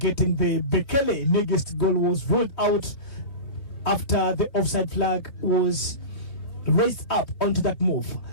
the Bekele Negest goal was ruled out after the offside flag was raised up onto that move.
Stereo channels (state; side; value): late; right; 3.3 ms